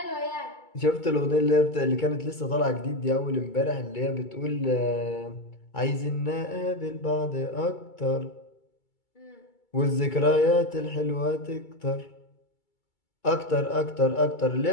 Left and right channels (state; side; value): late; right; 2.3 ms